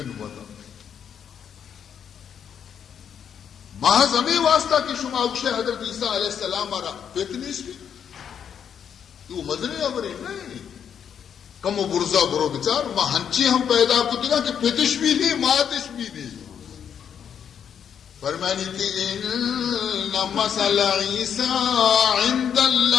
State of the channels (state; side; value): quieter; right; 8.2 dB